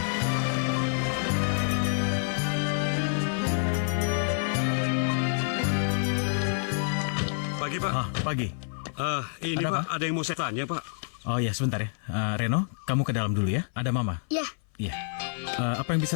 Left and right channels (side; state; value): right; silent; 56 dB below the other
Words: Pagi, Pak. Pagi. Ini Ada Pak, apa? ada yang mau saya tanya, Pak. Oh ya, sebentar ya. Reno, kamu ke dalam dulu ya. Ada Mama. Ya, Iya. Apa yang